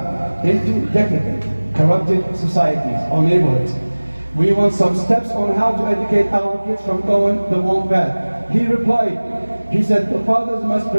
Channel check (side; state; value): both; inverted; correlation -1.00